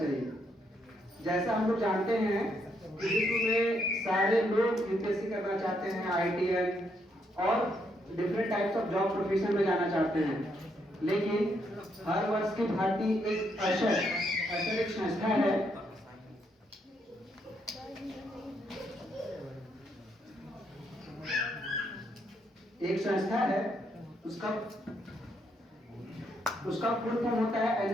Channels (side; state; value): both; normal; correlation 0.75